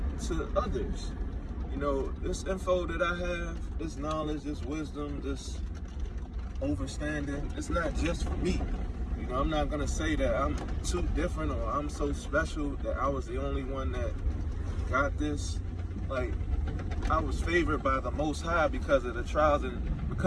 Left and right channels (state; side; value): identical; both; correlation 1.00